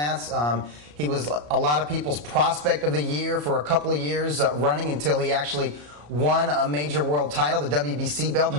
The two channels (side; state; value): left; late; 34 ms